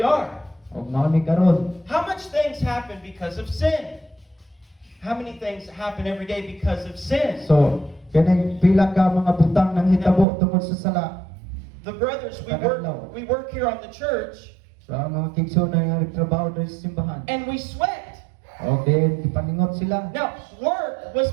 are. o mao ni karon. How much things happen because of sin? How many things happen every day because of sin? So kaning pila ka mga butang nang hitabo tungod sa sala. The brothers, we work here on the church, So ang mga kigsunan nga nagtrabaho diri sa simbahan. and we sweat. O then ipaningot sila. Now, work was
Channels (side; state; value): left; drops out; at 10.2 s